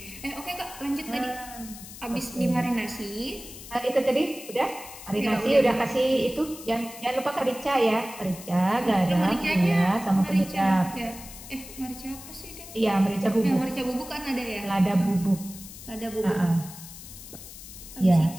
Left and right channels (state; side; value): noise; left; hiss, 15 dB below the sound